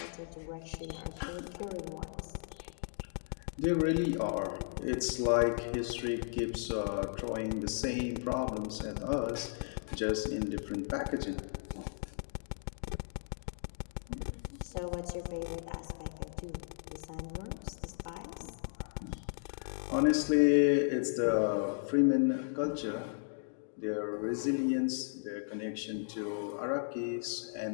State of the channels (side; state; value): right; silent; digital silence